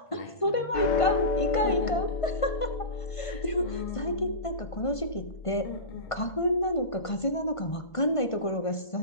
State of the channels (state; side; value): late; right; 1.5 ms